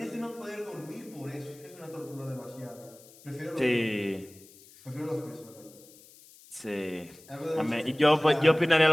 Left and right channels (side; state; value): left; noise; hiss, 23 dB below the sound